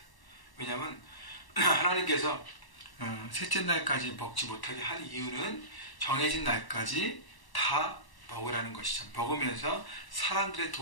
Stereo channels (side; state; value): right; late; 1.1 ms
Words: 왜냐하면 하나님께서 셋째 날까지 먹지 못하게 한 이유는 정해진 날까지 다 먹으라는 것이죠. 먹으면서 사람들의